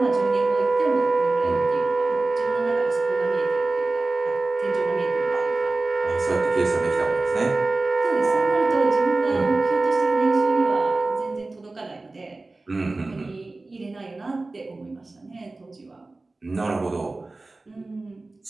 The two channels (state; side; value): quieter; left; 3.2 dB